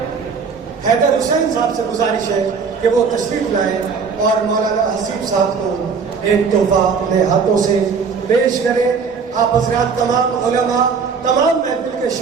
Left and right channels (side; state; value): left; quieter; 5.6 dB